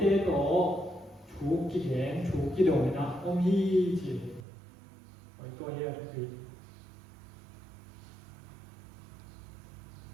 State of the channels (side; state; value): left; drops out; at 4.5 s